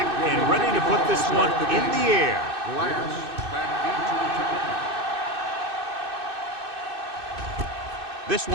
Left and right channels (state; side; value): late; left; 2.6 ms